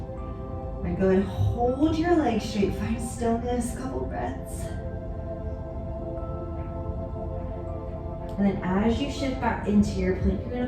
All right, go ahead and hold your legs straight, find stillness, couple breaths. And then as you shift back into your plank, you're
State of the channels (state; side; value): identical; both; correlation 1.00